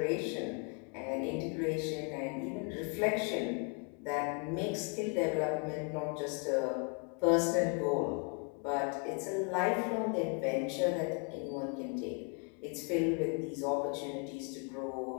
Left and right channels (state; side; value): quieter; right; 36.1 dB